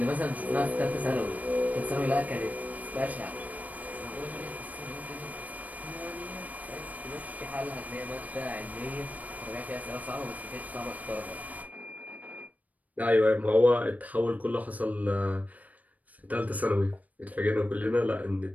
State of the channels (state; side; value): late; left; 0.073 ms